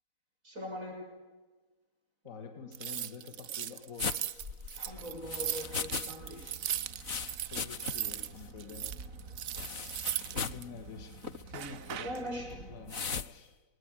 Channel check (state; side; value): late; left; 4.0 ms